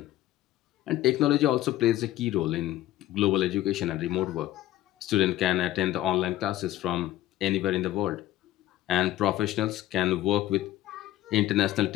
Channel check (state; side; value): quieter; right; 14.5 dB